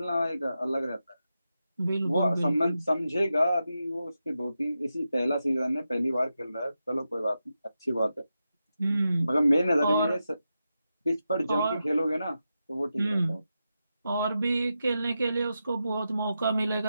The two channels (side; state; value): both; inverted; correlation -0.89